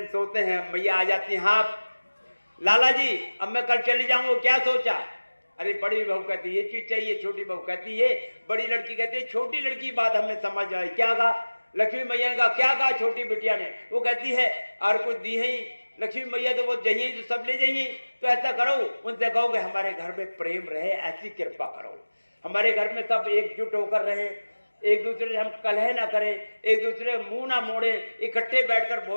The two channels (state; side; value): inverted; both; correlation -1.00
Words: सोते हैं, मैया आ जाती हैं, हाँ लाला जी अब मैं कल चली जाऊंगा, क्या सोचा? अरे बड़ी बहू कहती ये चीज चाहिए, छोटी बहू कहती ये, बड़ी लड़की कहती है, छोटी लड़की बात हमें समझ आई, क्या कहा? लक्ष्मी मैया ने कहा, क्या कहा छोटी बिटिया ने? वो कहती है और कुछ दी है लक्ष्मी मैया तो वो जाइए तो सब ले जाइए, तो ऐसा करो उनसे कहो कि हमारे घर में प्रेम रहे, ऐसी कृपा करो, हमारे घर में सब एकजुट होकर रहे, एक दूसरे से हम कलह ना करें, एक दूसरे मुंह ना मोड़े, इकट्ठे बैठकर